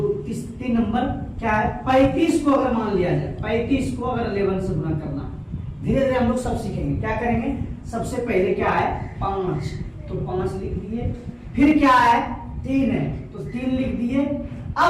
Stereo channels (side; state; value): both; identical; correlation 1.00